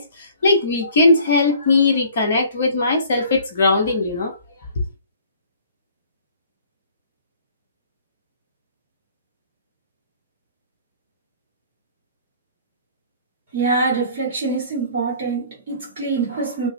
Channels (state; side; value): inverted; both; correlation -0.53